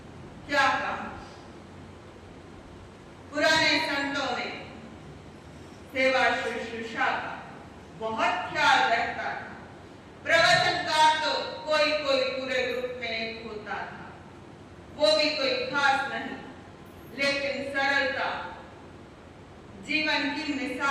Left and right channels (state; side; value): identical; both; correlation 1.00